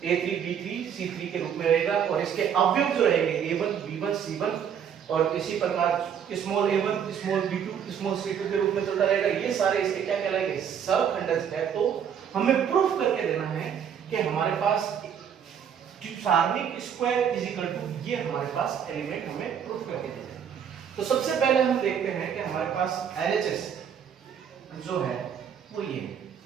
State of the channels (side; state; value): left; quieter; 8.2 dB